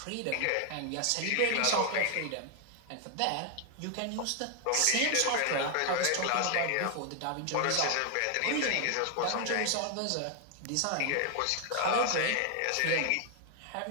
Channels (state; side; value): different; both; correlation 0.00